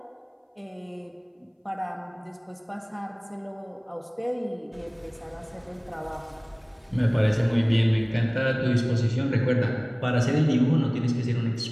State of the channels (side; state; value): both; identical; correlation 1.00